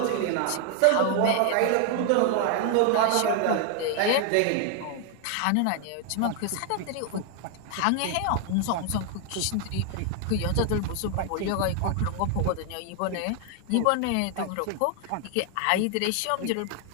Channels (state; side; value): different; both; correlation 0.00